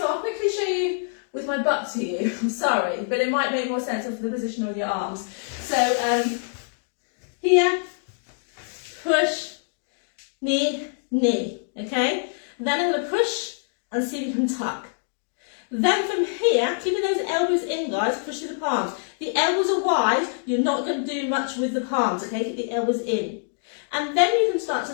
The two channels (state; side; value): silent; right; digital silence